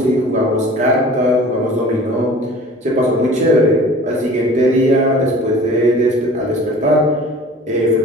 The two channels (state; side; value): normal; both; correlation 0.44